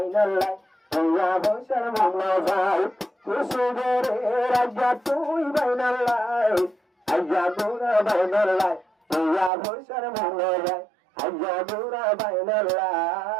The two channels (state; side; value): drops out; left; at 9.5 s